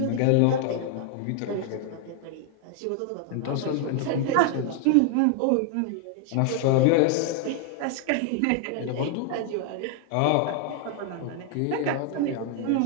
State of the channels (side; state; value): both; different; correlation 0.00